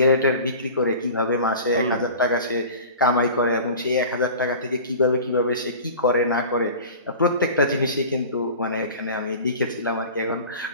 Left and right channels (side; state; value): both; inverted; correlation -0.38